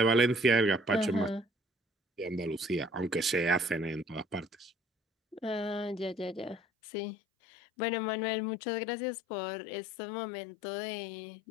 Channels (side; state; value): right; drops out; at 6.6 s